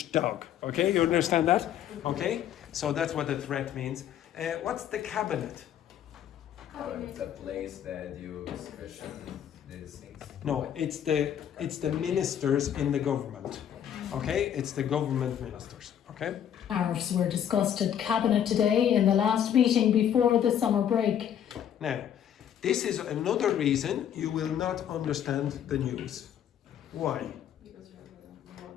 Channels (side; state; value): right; quieter; 9.7 dB